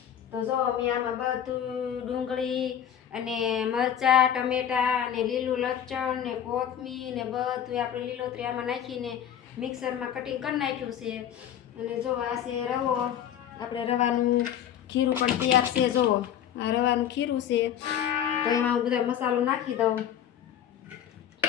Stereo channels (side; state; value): right; quieter; 9.7 dB